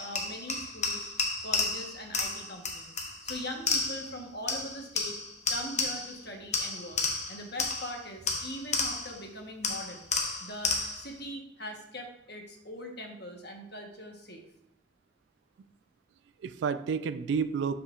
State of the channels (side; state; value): both; normal; correlation 0.05